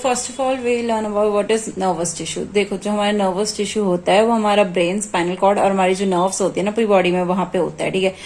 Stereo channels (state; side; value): identical; both; correlation 1.00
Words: of all we learn about what is nervous tissue. देखो जो हमारा nervous tissue होता है वो हमारा brain, spinal cord और हमारी जो nerves होती है ना पूरी बॉडी में वहां पे होता है, ठीक है।